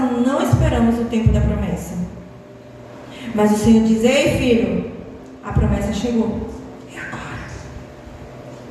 não esperamos o tempo da promessa. Mas o Senhor diz: ei, filho, a promessa chegou. É agora.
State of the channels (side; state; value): both; identical; correlation 1.00